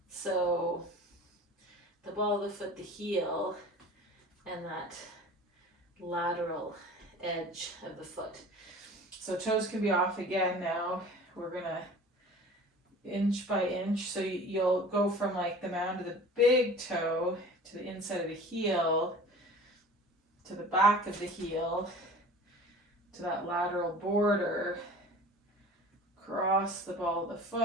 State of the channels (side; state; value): both; normal; correlation 0.41